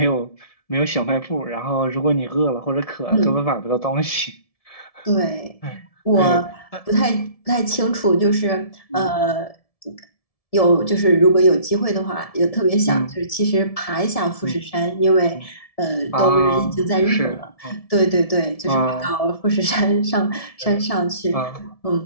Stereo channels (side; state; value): right; late; 1.7 ms